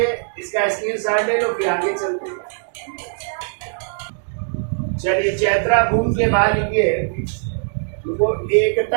इसका स्क्रीनशॉट ले लो, फिर आगे चलते हैं। चलिए चैत्रा भूमि के बाद लिखिए वो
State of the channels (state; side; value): silent; left; digital silence